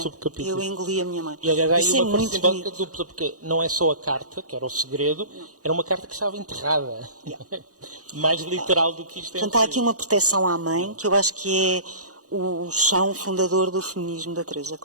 subcapítulos. Eu engoli a minha mãe. E aliás, há aí Isso é uma muito simbólica bonito. dupla, porque não é só a carta, que era o segredo, era uma carta que estava enterrada. Mais literal do que isto é. Portanto, há aqui uma proteção à mãe, que eu acho que é o chão fundador do feminismo da Teresa,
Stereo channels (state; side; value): late; left; 0.66 ms